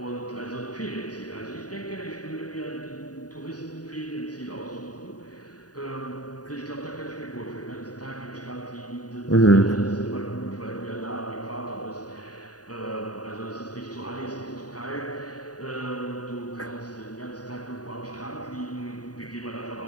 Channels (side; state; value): right; late; 0.68 ms